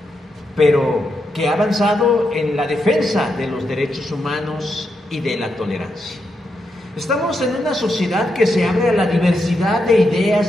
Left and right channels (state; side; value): normal; both; correlation 0.83